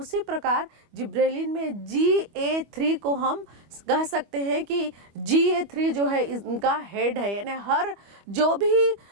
प्रकार जिब्रेलिन में GA3 को हम कह सकते हैं कि GA3 जो है इनका हेड है, यानी हर जो भी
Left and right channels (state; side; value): late; left; 25 ms